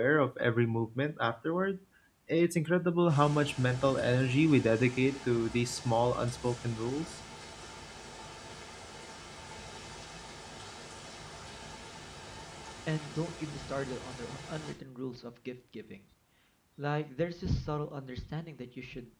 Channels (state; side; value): identical; both; correlation 1.00